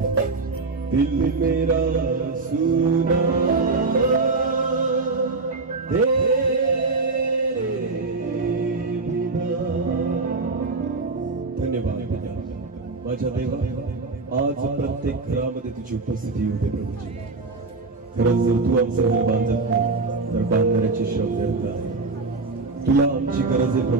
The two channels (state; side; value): quieter; left; 3.8 dB